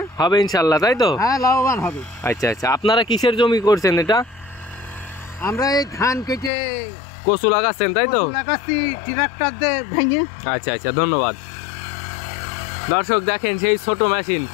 হবে ইনশাল্লাহ, তাই তো? হ্যাঁ, লাভবান হবে। আচ্ছা আচ্ছা, আপনারা কিসের জমি করছেন এটা? আমরা এই ধান কেটে কচু লাগাচ্ছেন, তাই তো? লাগাচ্ছি ট্রাক্টর দিয়ে ভেঙে। আচ্ছা আচ্ছা, ধন্যবাদ। দর্শক দেখেন সেই ছোট মেশিন,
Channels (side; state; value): right; drops out; at 6.5 s